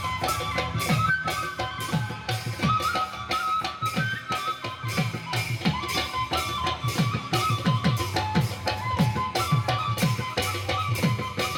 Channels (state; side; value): identical; both; correlation 1.00